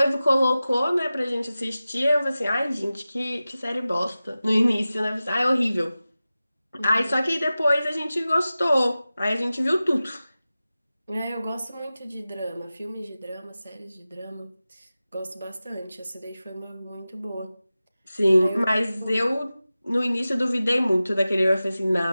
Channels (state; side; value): inverted; both; correlation -0.95